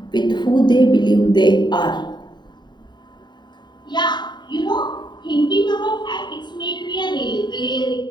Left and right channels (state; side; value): late; right; 0.21 ms